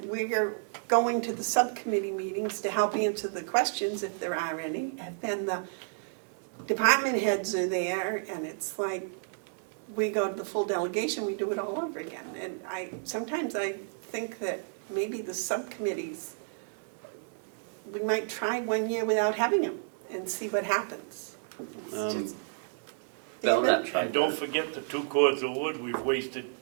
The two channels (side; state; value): left; silent; 57 dB below the other